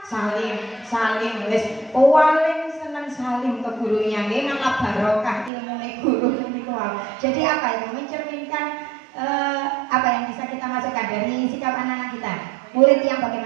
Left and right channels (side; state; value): left; drops out; at 5.5 s